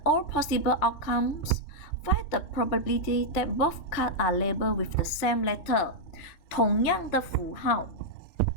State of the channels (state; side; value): late; right; 3.3 ms